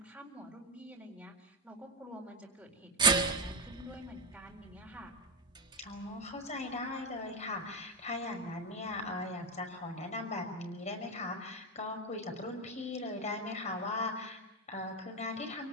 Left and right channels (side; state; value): both; normal; correlation 0.11